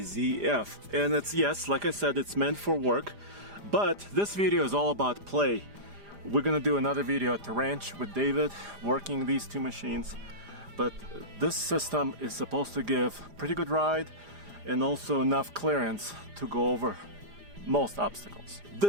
And it's, yes, like I said, it's meant for work. But this video is all about play. We're gonna do another video at the ranch with David, working these two machines. But this system is supposed to give pretty good ride and also enough clearance to go over most obstacles.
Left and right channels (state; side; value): late; left; 4.9 ms